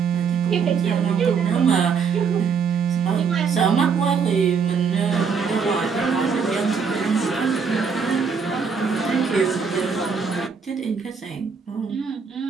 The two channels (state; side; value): quieter; left; 5.9 dB